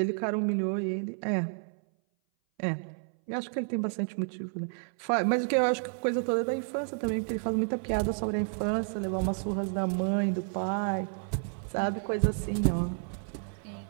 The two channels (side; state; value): left; silent; 57 dB below the other